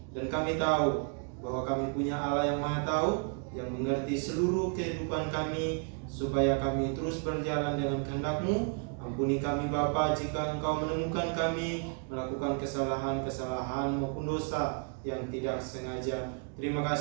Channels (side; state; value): left; quieter; 38.9 dB